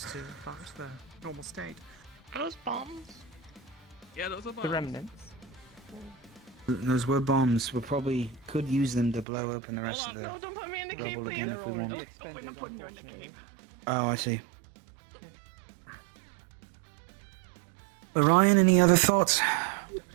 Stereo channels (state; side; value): drops out; left; at 9.2 s